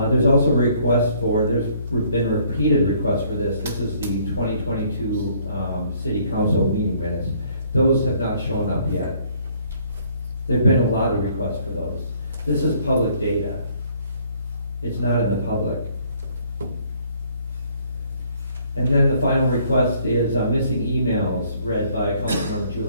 also there's been repeated requests for this. This is the 2022 City Council meeting minutes. Those have not shown up yet. There've been a lot of requests for those. This is public data. It's not in the public. And then the final request is missing emails read by Councilmember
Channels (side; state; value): both; inverted; correlation -0.62